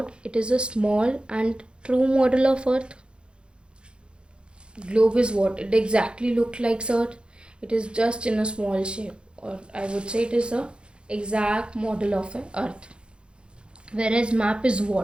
It is a small and true model of earth. Globe is what? It exactly looks like earth. It is just in a small shape, or I would say it is a exact model of an earth. Whereas map is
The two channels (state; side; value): late; left; 0.054 ms